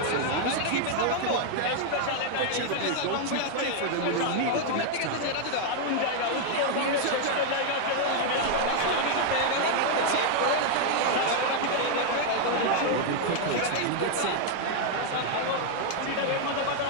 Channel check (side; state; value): both; different; correlation 0.00